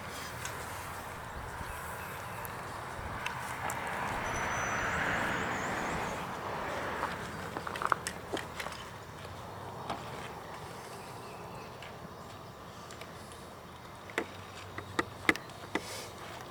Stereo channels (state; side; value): identical; both; correlation 1.00